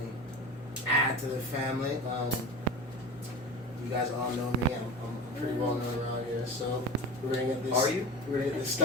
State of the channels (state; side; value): normal; both; correlation 0.30